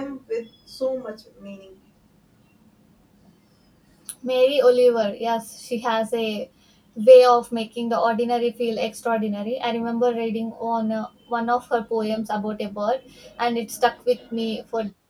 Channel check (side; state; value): both; identical; correlation 1.00